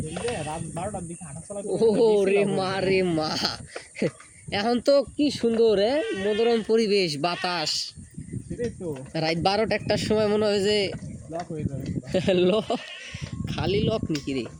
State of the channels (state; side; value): identical; both; correlation 1.00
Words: ও রে মা এখন তো কি সুন্দর মনোরম পরিবেশ, বাতাস। রাত 12-1টার সময় মনে হয় যে খালি লক নাকি রে।